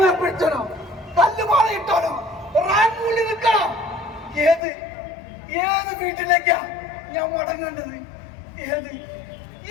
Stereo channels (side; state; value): right; drops out; at 4.6 s